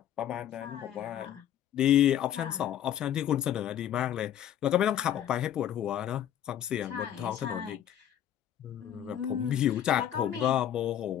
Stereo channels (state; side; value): quieter; right; 10.7 dB